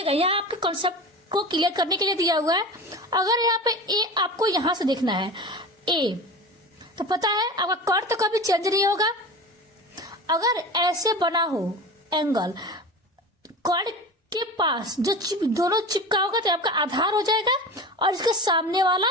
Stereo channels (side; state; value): both; normal; correlation 0.32